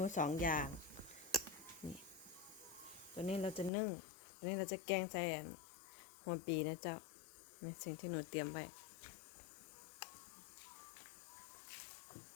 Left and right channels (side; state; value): right; drops out; at 3.7 s